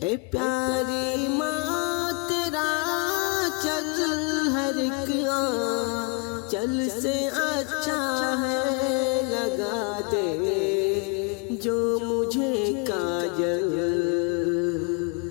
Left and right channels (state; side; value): quieter; right; 28.3 dB